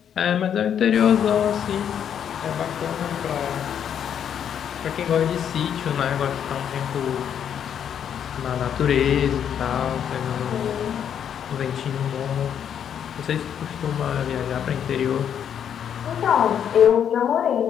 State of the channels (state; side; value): quieter; right; 8.8 dB